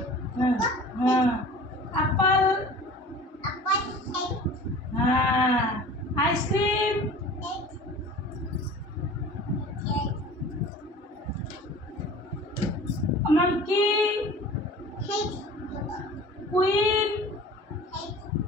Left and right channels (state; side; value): normal; both; correlation 0.42